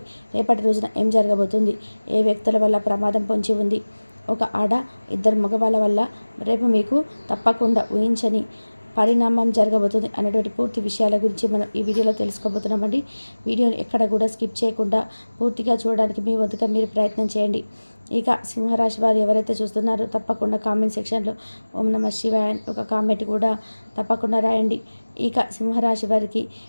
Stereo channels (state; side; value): inverted; both; correlation -1.00